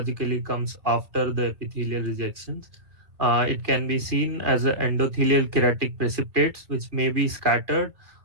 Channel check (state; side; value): late; left; 2.3 ms